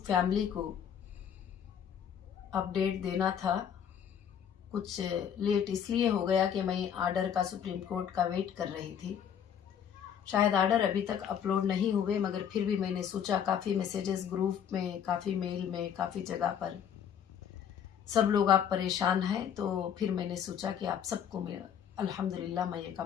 फैमिली को अपडेट देना था। कुछ लेट इसलिए हो गया कि मैं आर्डर का सुप्रीम कोर्ट का वेट कर रही थी। शायद आर्डर अभी तक अपलोड नहीं हुए, मगर फिर भी मैंने सोचा, काफ़ी मैसेजेस ग्रुप में, काफ़ी मेल में, काफ़ी जगह पर सब लोग आप परेशान हैं, तो फिर मैंने सोचा कि आप सबको मैं अल्हम्दुलिल्लाह मैं एक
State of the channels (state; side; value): quieter; right; 8.6 dB